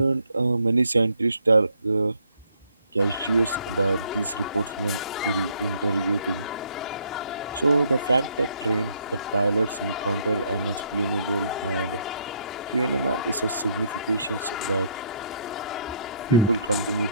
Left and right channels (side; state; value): both; inverted; correlation -0.68